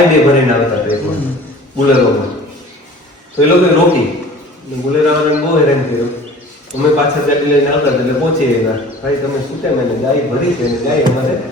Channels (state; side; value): normal; both; correlation 0.45